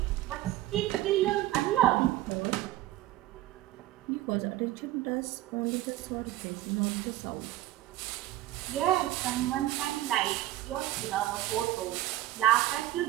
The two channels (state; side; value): quieter; left; 15.2 dB